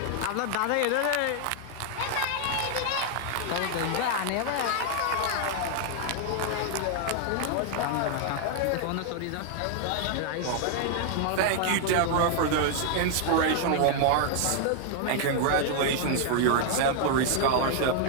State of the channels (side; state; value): both; different; correlation 0.00